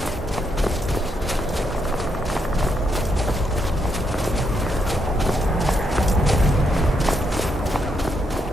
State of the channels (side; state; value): both; normal; correlation 0.78